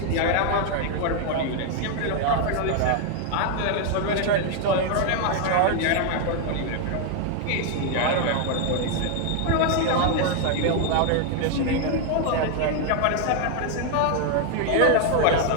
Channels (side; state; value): both; different; correlation 0.00